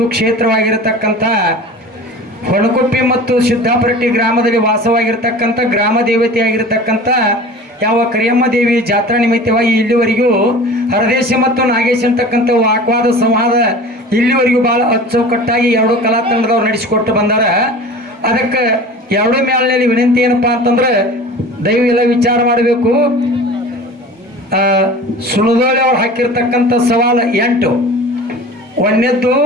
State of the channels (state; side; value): normal; both; correlation 0.38